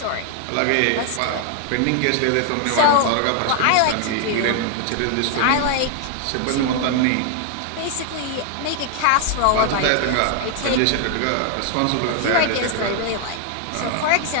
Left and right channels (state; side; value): different; both; correlation 0.00